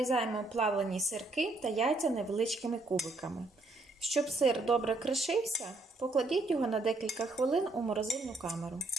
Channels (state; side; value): quieter; left; 3.1 dB